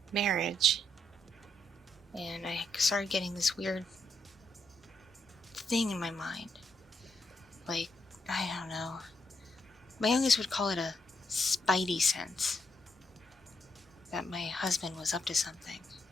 marriage. And I started getting this weird thing in my mind. Like, I don't know. My youngest would call it a spidey sense. That my husband was up to something.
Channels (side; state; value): both; normal; correlation 0.78